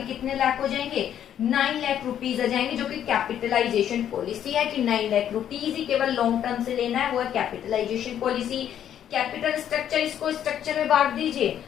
कितने लाख हो जाएंगे? 9 लाख रुपीज आ जाएंगे, जो कि कैपिटलाइजेशन पॉलिसी है कि 9 लाख रुपीज ही केवल लॉन्ग टर्म से लेना है, वो है कैपिटलाइजेशन पॉलिसी। कैपिटल स्ट्रक्चर, इसको स्ट्रक्चर में बांट दीजिए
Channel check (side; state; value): right; quieter; 10.1 dB